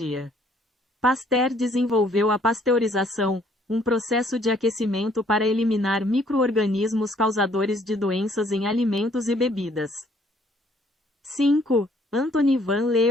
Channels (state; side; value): normal; both; correlation 0.63